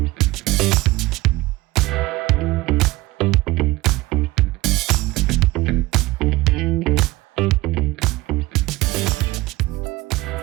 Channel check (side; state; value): left; quieter; 19.5 dB